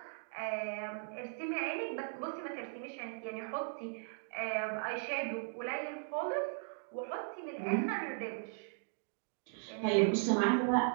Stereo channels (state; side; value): silent; left; digital silence